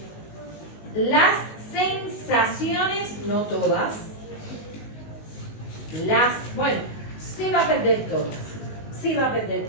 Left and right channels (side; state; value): right; late; 19 ms